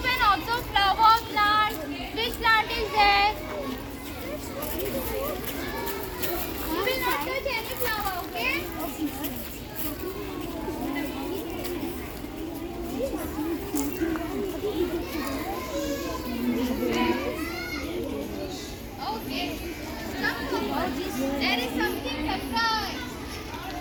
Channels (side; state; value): both; identical; correlation 1.00